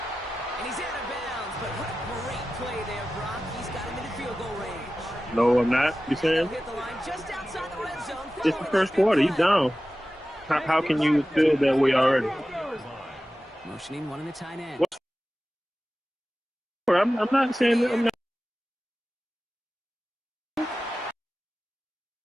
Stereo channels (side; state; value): both; normal; correlation 0.95